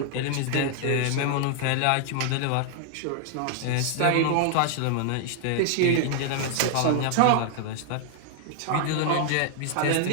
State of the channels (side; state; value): both; different; correlation 0.00